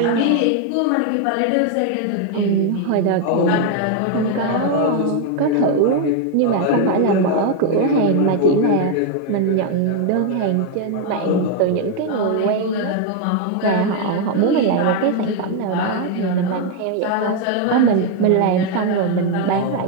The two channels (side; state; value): both; different; correlation 0.01